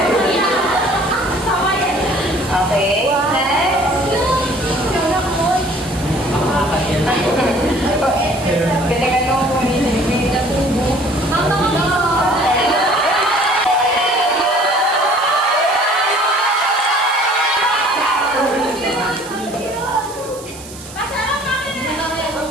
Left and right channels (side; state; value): right; noise; hiss, 16 dB below the sound